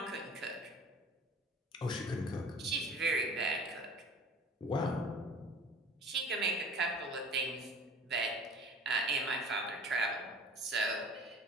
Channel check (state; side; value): normal; both; correlation 0.44